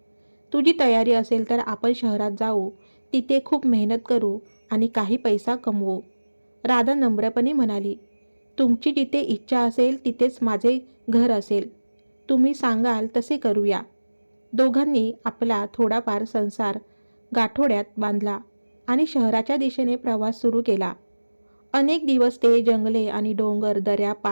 तुझी तयारी असेल तर आपण शहरात जाऊ, तिथे खूप मेहनत करू आणि काही पैसा कमवू. राधा नम्रपणे म्हणाली, तुमची जिथे इच्छा असेल तिथेच माझे घर असेल. तुम्ही सांगाल तसे करूया. दोघांनी आपला थोडाफार संसार गाठोड्यात बांधला आणि शहराच्या दिशेने प्रवास सुरू केला. अनेक दिवस ते जंगले आणि डोंगर दऱ्या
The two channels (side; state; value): both; inverted; correlation -1.00